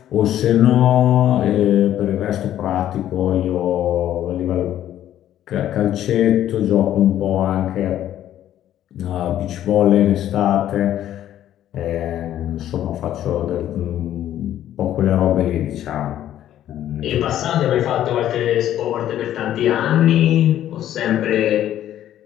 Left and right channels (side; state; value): right; quieter; 11.8 dB